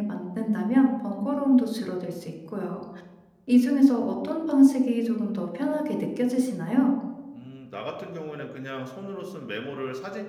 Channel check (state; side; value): identical; both; correlation 1.00